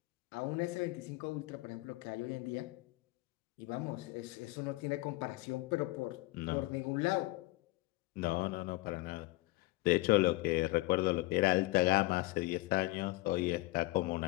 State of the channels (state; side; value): quieter; right; 20.6 dB